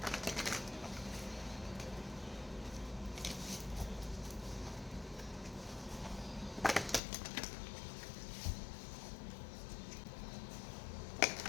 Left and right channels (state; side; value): drops out; right; at 7.0 s